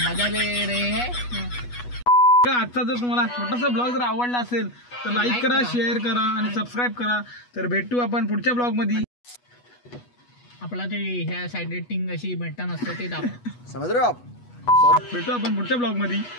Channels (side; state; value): right; late; 8.2 ms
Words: ले रहे हैं आजचा जर तुम्हाला छोटासा ब्लॉग जर आवडला असेल तर लाईक करा शेअर करा आणि सबस्क्राईब करा तर भेटू आपण पुढच्या ब्लॉग मध्ये आपला ते ह्या साईड रेटिंग अशी भेटता नसतं ते दाखव समझ रहे हो आप. भेटू आपण पुढच्या ब्लॉग मध्ये